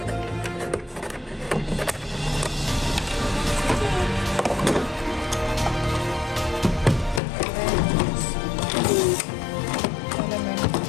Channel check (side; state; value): right; drops out; at 7.2 s